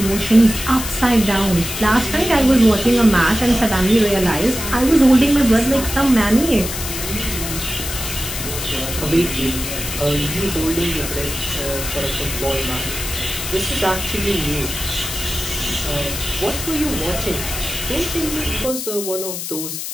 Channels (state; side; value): noise; left; hiss, 6 dB below the sound